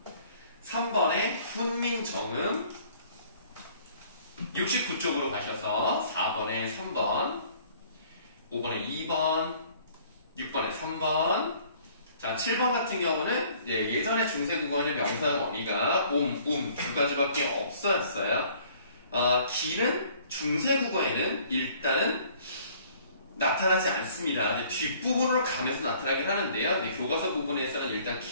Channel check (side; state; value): both; inverted; correlation -0.57